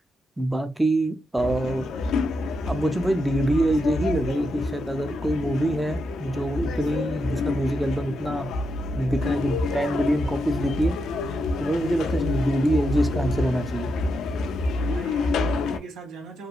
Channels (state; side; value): normal; both; correlation 0.84